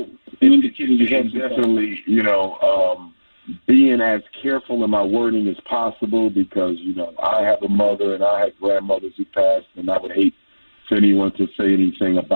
You indicated you had definitely, being as careful in my wording as possible because, I have a mother and I had grandmothers who passed, and I would hate for anyone to say anything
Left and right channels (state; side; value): inverted; both; correlation -1.00